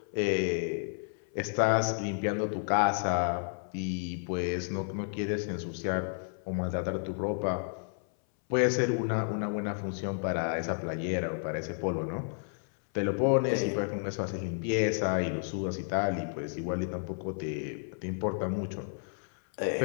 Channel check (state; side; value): silent; right; 57 dB below the other